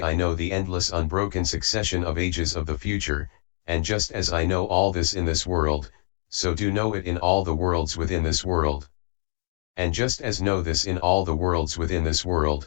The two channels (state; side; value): silent; right; 62 dB below the other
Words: I know the endless unbroken succession of ages of the future, and just as I know all this in this world, so do know it in all the worlds within this world. And just as know this in all the worlds within this